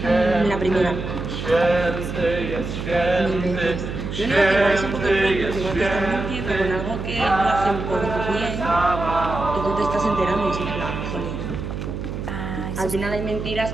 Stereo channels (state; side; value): noise; right; hum, 5 dB below the sound